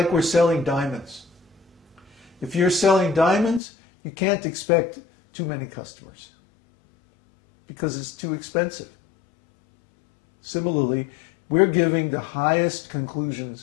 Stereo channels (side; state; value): right; drops out; at 3.6 s